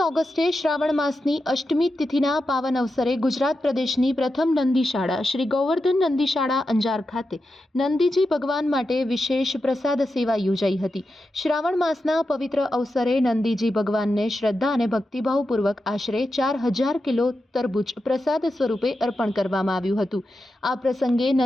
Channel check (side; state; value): both; normal; correlation 0.89